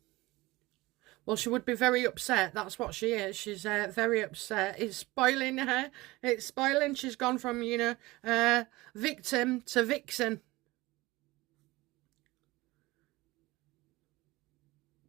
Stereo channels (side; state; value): left; quieter; 20.4 dB